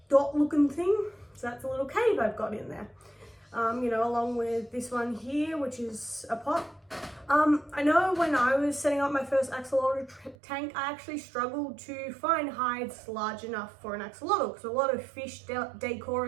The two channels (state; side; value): drops out; left; at 10.4 s